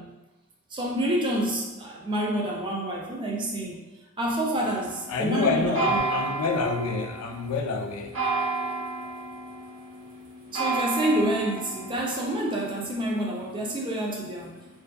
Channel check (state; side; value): normal; both; correlation 0.34